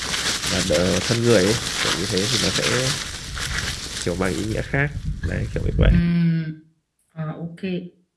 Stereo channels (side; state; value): both; identical; correlation 1.00